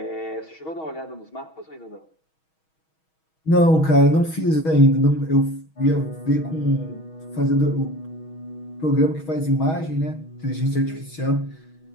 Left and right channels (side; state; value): right; late; 6.3 ms